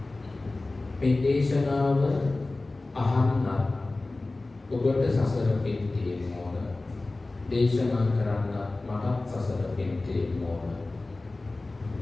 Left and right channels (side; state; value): right; quieter; 3.1 dB